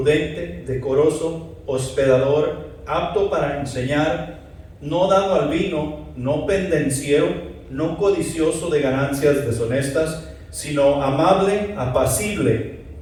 decoroso, hospedador, apto para enseñar, no dado al vino, no pendenciero, no codicioso de ganancias deshonestas, sino amable, apacible,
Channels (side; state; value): both; identical; correlation 1.00